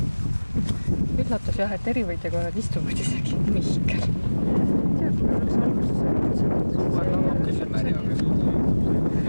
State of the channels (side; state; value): both; inverted; correlation -1.00